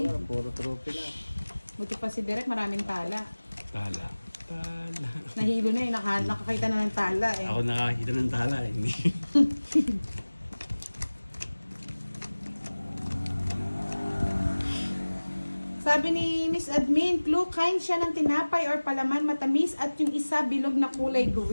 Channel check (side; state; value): both; inverted; correlation -1.00